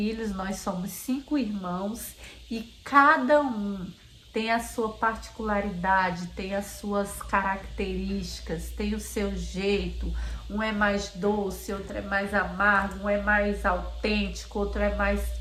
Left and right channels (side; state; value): both; identical; correlation 1.00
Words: nós somos 5 irmãos e cada um tem a sua particularidade, tem as suas características, tem o seu jeito. Um é mais doce, outro é mais amargo, um é mais autêntico, outro é mais